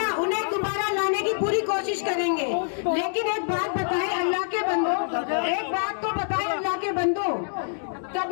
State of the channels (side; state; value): right; silent; digital silence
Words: उन्हें दोबारा लाने की पूरी कोशिश करेंगे। लेकिन एक बात बताएं अल्लाह के बंदो, एक बात तो बताएं अल्लाह के बंदो,